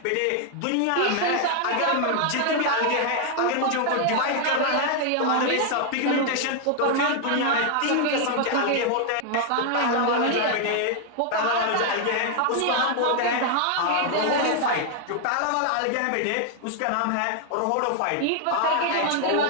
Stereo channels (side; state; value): both; different; correlation 0.00